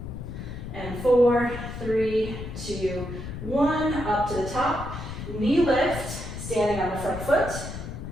And 4, 3, 2, 1. Up to the top. Knee lift, standing on the front foot.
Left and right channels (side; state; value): left; noise; rumble, 8 dB below the sound